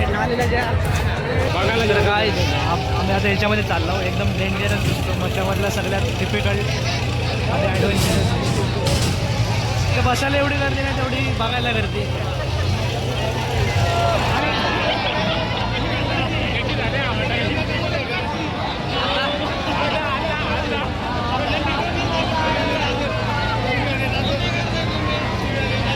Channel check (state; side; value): identical; both; correlation 1.00